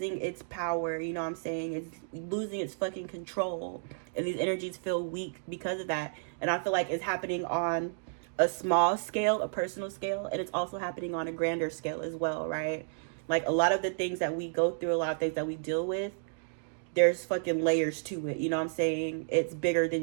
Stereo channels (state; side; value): silent; left; digital silence